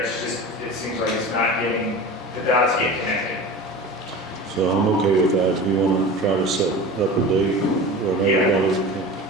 just, it seems like it's not getting, the dots get connected. So I'm okay with that. If you want to try to set up a date where everybody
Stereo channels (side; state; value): both; normal; correlation 0.34